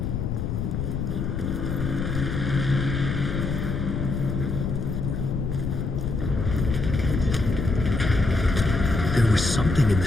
There was something in the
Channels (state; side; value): noise; left; rumble, 2 dB below the sound